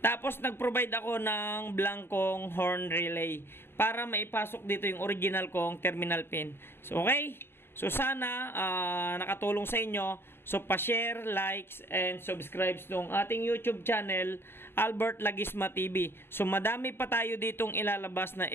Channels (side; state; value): right; late; 0.11 ms